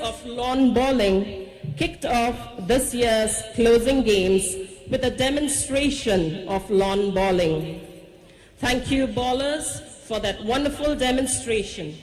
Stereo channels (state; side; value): identical; both; correlation 1.00